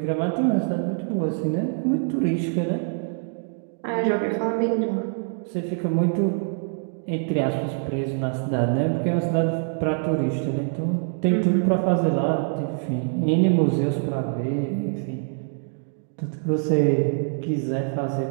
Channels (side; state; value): left; silent; 57 dB below the other